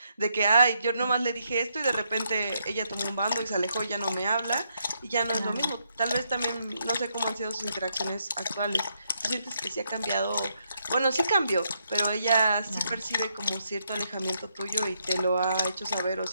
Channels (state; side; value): inverted; both; correlation -0.77